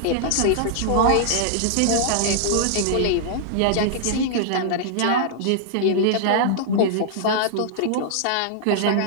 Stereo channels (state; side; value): different; both; correlation -0.01